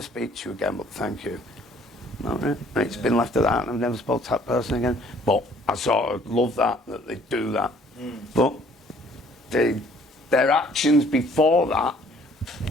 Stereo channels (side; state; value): both; normal; correlation 0.59